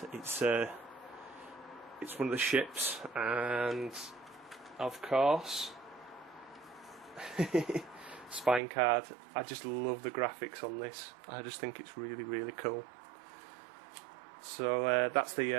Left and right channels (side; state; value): left; drops out; at 8.6 s